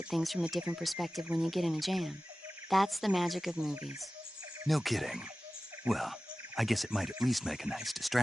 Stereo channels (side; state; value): both; normal; correlation 0.96